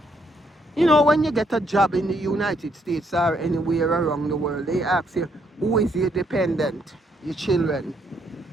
You know, when you get a job in the United States or anywhere around the world, they ask you, who is your dependent? Your children.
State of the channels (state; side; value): normal; both; correlation 0.72